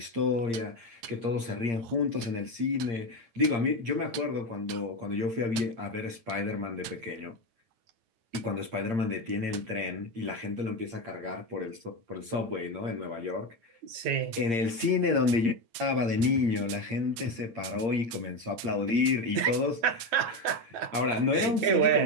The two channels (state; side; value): late; left; 8.7 ms